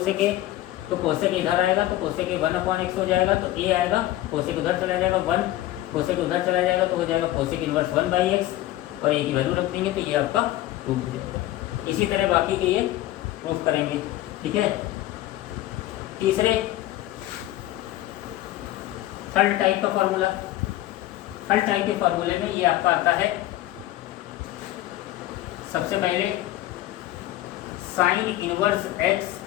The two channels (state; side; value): quieter; right; 15.2 dB